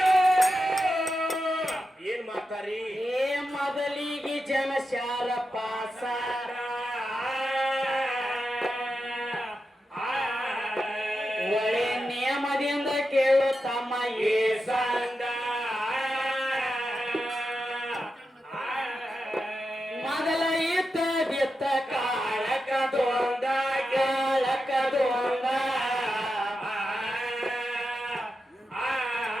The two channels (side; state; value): both; normal; correlation 0.89